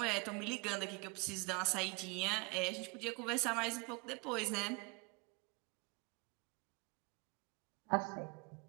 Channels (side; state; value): left; quieter; 27.9 dB